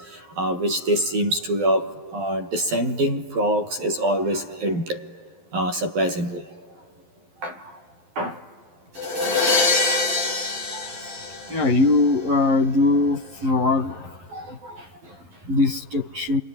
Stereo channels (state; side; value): late; left; 11 ms